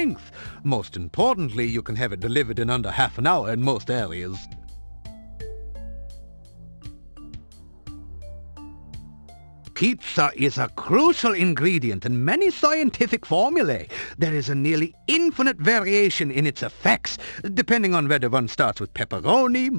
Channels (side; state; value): both; inverted; correlation -1.00